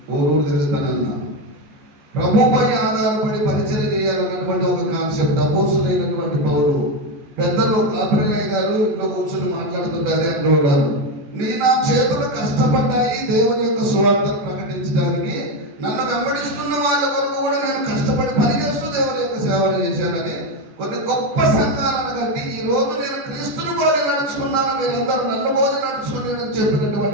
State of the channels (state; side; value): late; left; 14 ms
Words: ఊరు తిరుగుతానన్నా. ప్రభుపై ఆధారపడి పరిచయం చేయాలన్నటువంటి ఒక కాన్సెప్ట్. అపోస్తులైనటువంటి పౌలు పెద్దలు కాపరిలయ్య గారు ఇంట్లో కూర్చొని మాట్లాడుతుంటే అదే అంటూ ఉన్నారు, నా చేతులు కష్టపడ్డాయి దేవుని యొక్క సువార్తను ప్రకటించడానికి. నన్ను వెంబడిస్తున్న వాళ్ళ వరకు కూడా నేను కష్టపడి పనిచేస్తూ దేవుని యొక్క సేవలు చేశానని కొన్ని గొప్ప సంఘాలను కట్టి ఈ రోజు నేను క్రీస్తుని పోలి నడుచుకున్నాను, మీరందరూ నన్ను పోలి నడుచుకుని